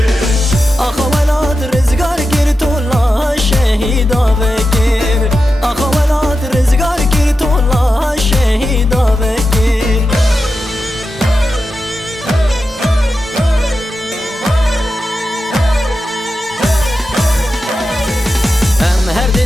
آخا ولاد رزگار گیر تولا شهیدا بگیر آخا ولاد رزگار گیر تولا شهیدا بگیر هم هر دی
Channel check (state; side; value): normal; both; correlation 0.90